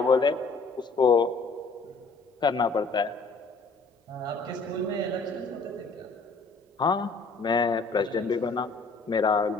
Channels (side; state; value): right; quieter; 3.9 dB